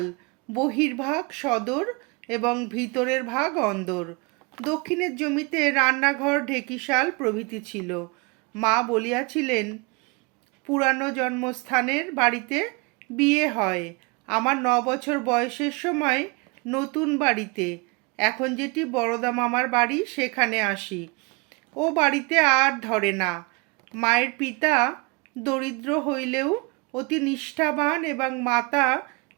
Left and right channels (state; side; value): quieter; left; 29.2 dB